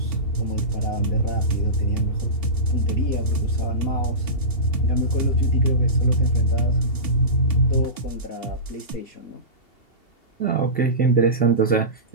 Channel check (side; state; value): right; late; 2.7 ms